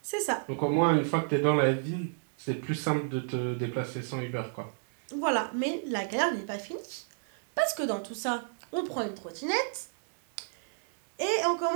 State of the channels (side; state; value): left; silent; digital silence